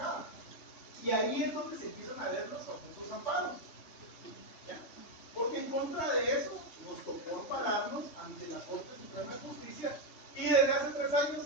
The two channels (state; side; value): late; right; 3.2 ms